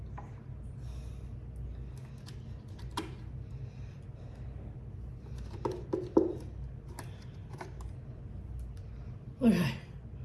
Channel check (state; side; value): identical; both; correlation 1.00